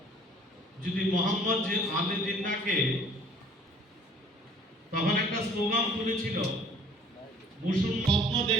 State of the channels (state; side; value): normal; both; correlation 0.54